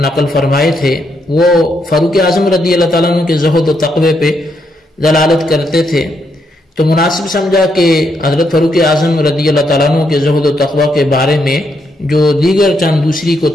نقل فرمائے تھے، وہ فاروق اعظم رضی اللہ تعالیٰ عنہ کے زہد و تقوی پہ دلالت کرتے تھے، تو مناسب سمجھا کہ حضرت فاروق اعظم رضی اللہ تعالیٰ عنہ کے زہد و تقوی کے بارے میں جو دیگر چند دوسری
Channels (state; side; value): normal; both; correlation 0.78